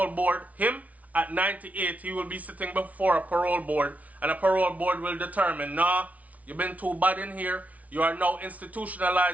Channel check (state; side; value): late; left; 0.069 ms